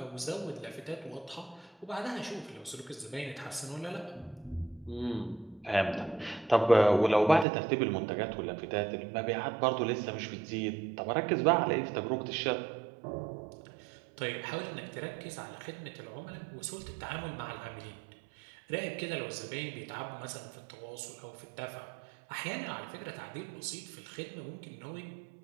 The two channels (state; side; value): drops out; left; at 7.5 s